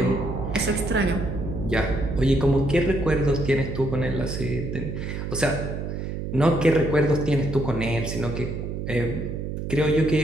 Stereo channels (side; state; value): right; noise; hum, 5 dB below the sound